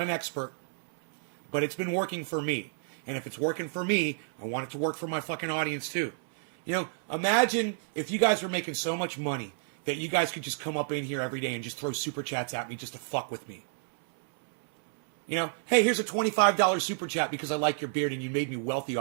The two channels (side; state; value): left; silent; 57 dB below the other